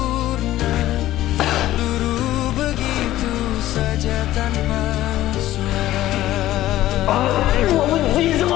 luruh begitu saja tanpa suara. Gue benci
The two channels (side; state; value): right; quieter; 14.6 dB